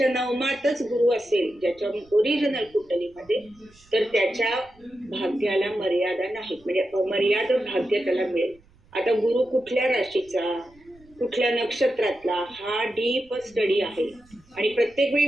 नवमातच गुरु असेल ज्याच्या ओरिजिनल कुंडलीमध्ये, तर त्याच्या भाग्याला मर्यादा नाही, म्हणजे अमर्याद भाग्य त्याला मिळेल. आता गुरु कुठल्या राशीचा, कुठल्या नक्षत्रातला, हा डीप स्टडी आहे. आणि प्रत्येक वेळी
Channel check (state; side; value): noise; right; rumble, 29 dB below the sound